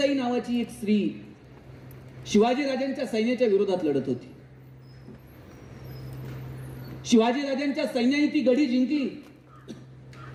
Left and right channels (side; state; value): both; identical; correlation 1.00